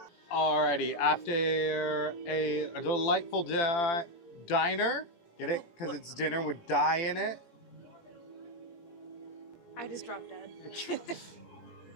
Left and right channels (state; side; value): late; right; 18 ms